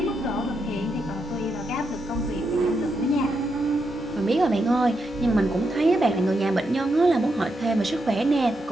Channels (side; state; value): both; normal; correlation 0.83